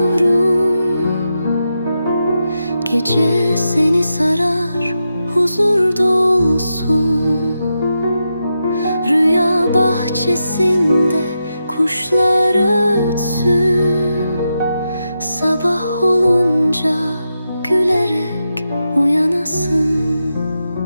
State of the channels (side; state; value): both; inverted; correlation -0.87